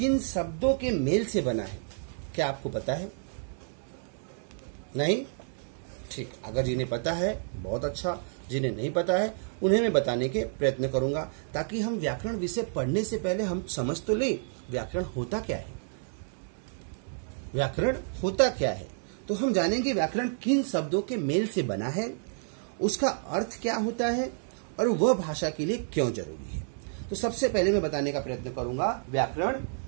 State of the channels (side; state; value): left; silent; digital silence